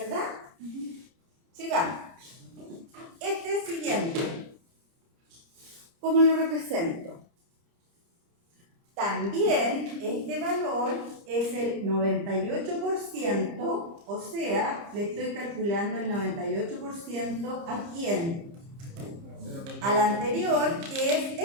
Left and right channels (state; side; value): late; left; 30 ms